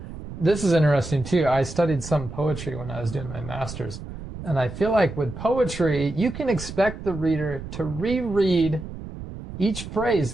is interesting too. I studied some poetry when I was doing my master's. And I feel like with poetry, you can expect the reader to reread each phrase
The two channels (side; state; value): right; noise; rumble, 11 dB below the sound